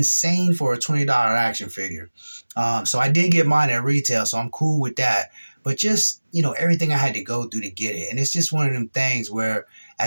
for a $20 action figure. So I did get mine at retail, so I'm cool with that. But just everything I had to go through to get it, and it's just one of them things where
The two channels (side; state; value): both; inverted; correlation -1.00